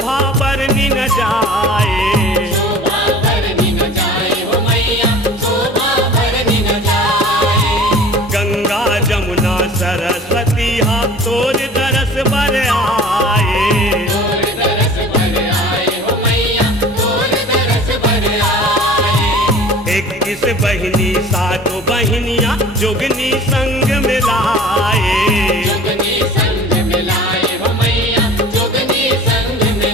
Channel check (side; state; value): both; normal; correlation 0.43